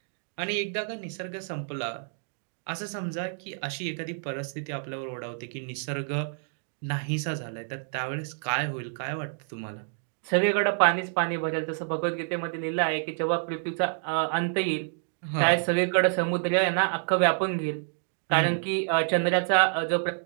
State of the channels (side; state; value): left; silent; digital silence